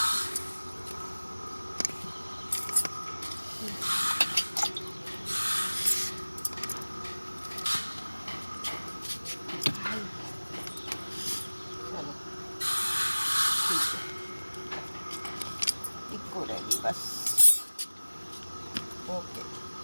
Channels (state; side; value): inverted; both; correlation -1.00